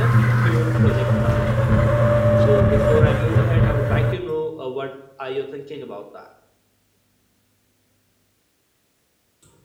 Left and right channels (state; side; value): identical; both; correlation 1.00